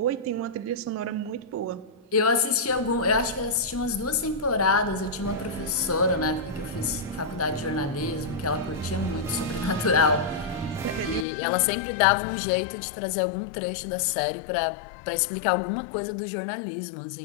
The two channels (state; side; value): drops out; right; at 11.2 s